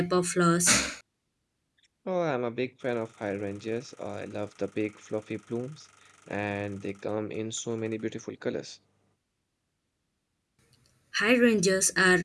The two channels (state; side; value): identical; both; correlation 1.00